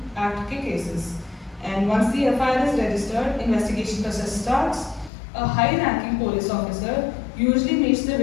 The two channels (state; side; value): drops out; right; at 5.1 s